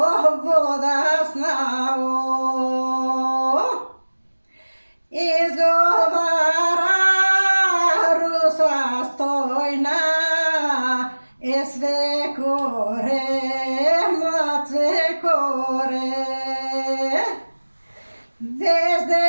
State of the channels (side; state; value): both; inverted; correlation -1.00